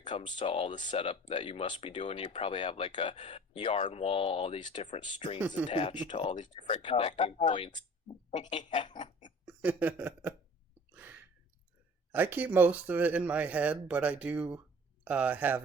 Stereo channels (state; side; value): normal; both; correlation 0.46